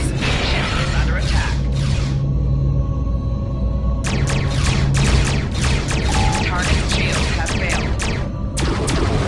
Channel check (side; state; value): both; identical; correlation 1.00